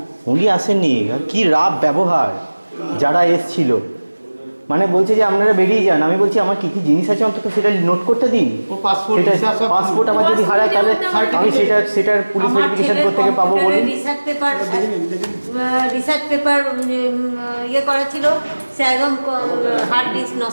উনি আসেননি। কি রাব ব্যবহার যারা এসছিল, মানে বলছে যে আপনারা বেরিয়ে যান। আমি বলছি আমার কি কি জিনিস আছে অন্তত সেটা নোট করতে দিন। সেটা পাসপোর্ট আমার যদি হারায় তাহলে আমি সেটার পুলিশ ভেরিফিকেশন করতে থেকে পাবো বলুন। রিসার্চ পেপার ইয়ে করা ছিল, সে একদম হার্ড ডিস্ক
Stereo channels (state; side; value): inverted; both; correlation -1.00